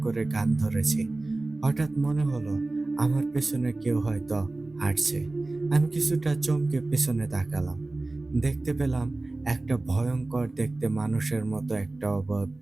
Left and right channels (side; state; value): left; quieter; 3.0 dB